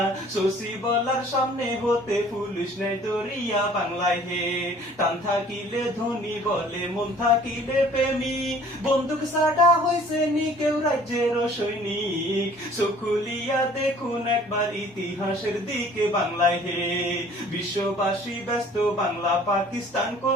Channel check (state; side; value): normal; both; correlation 0.53